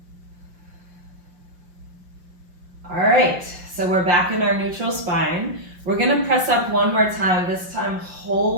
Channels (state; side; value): late; left; 5.7 ms